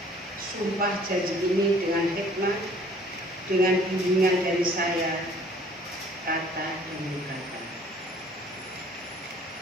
sumpah janji ini dengan hikmat, dengan bimbingan dari saya, kata demi kata.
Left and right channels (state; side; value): normal; both; correlation 0.55